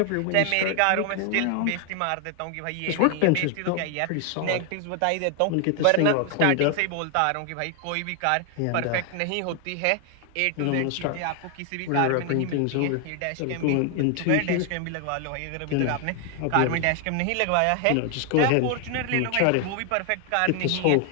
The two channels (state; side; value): different; both; correlation 0.00